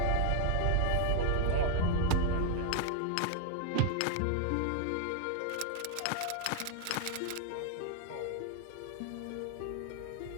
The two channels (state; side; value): different; both; correlation 0.00